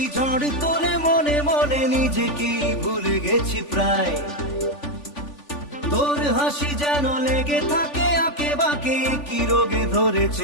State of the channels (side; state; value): right; late; 3.5 ms